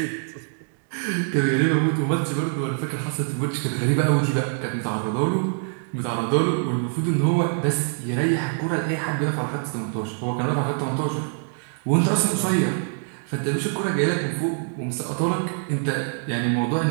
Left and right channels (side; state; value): left; silent; 62 dB below the other